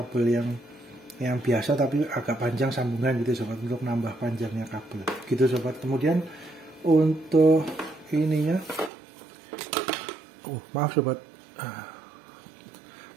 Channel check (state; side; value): drops out; left; at 8.9 s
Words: yang biasa tapi agak panjang sambungan gitu sobat, untuk nambah panjangnya kabel gitu sobat. Kemudian untuk ininya, maaf sobat,